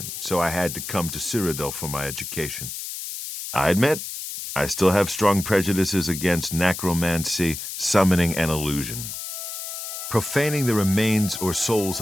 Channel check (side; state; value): left; noise; hiss, 7 dB below the sound